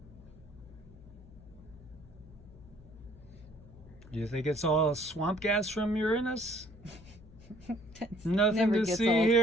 Do you think it's all swamp gas from Uranus? Nothing Never to gets see old.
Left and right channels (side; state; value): left; noise; hum, 20 dB below the sound